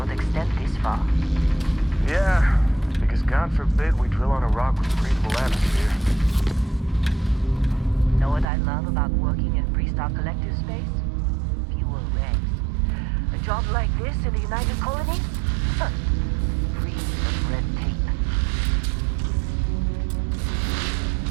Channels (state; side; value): drops out; left; at 8.5 s